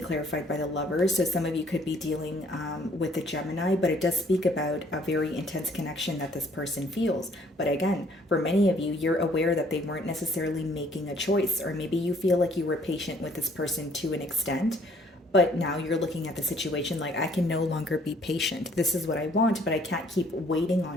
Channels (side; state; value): both; normal; correlation 0.61